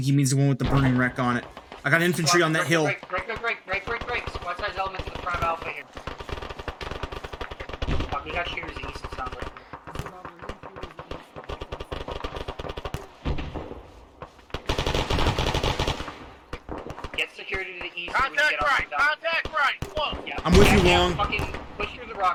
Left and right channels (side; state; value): both; identical; correlation 1.00